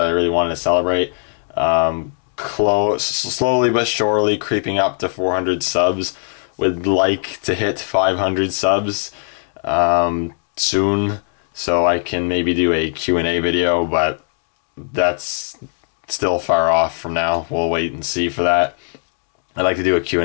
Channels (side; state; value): right; silent; 57 dB below the other